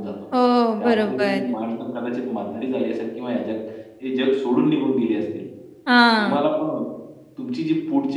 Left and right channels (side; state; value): both; identical; correlation 1.00